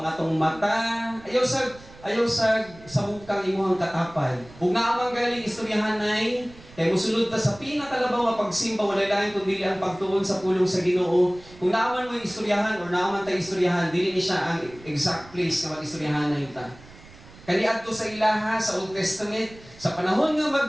ang atong mata, ayaw sa bukang imuhang katapad. Ug naa man galing istoryahanay, kay musulod ta sa pinakalabaw nga pagsimba wala lain kundi ang pagtuon sa pulong sa Ginoo. Kung naaman mo istoryahan or naaman ta istoryahan, dili ni siya ang exact place nga mag-istoryahan na ta. Kaniadto sa ilaha sa Old Testament, sa panahon nga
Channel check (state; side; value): noise; right; rumble, 21 dB below the sound